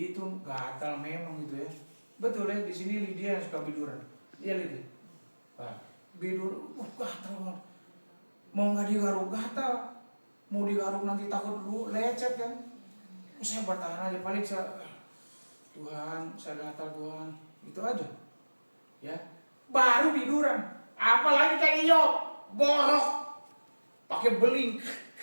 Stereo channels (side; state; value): both; inverted; correlation -1.00